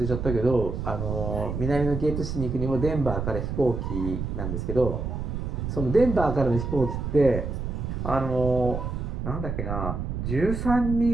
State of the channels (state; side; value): noise; right; rumble, 4 dB below the sound